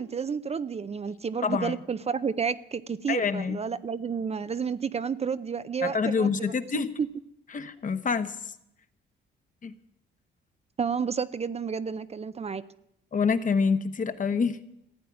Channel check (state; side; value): normal; both; correlation 0.52